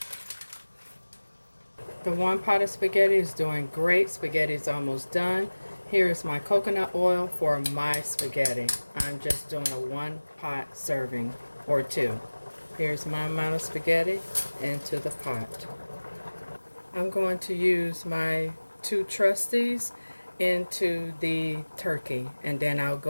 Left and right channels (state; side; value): inverted; both; correlation -1.00